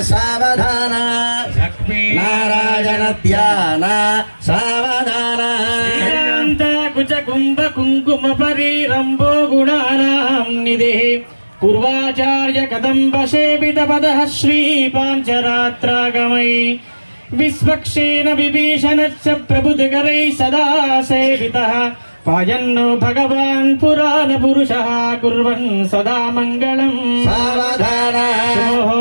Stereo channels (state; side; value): inverted; both; correlation -1.00